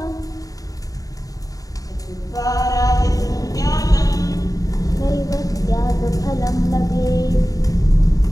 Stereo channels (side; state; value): right; late; 0.17 ms